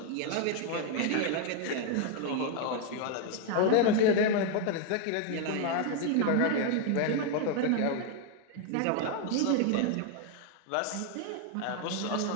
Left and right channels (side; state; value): both; different; correlation 0.01